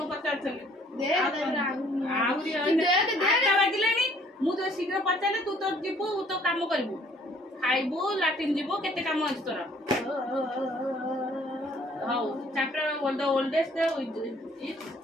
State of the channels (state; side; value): normal; both; correlation 0.60